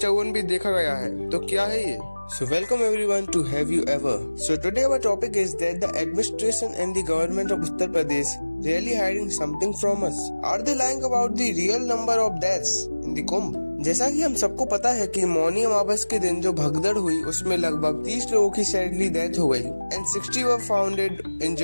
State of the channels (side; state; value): both; inverted; correlation -1.00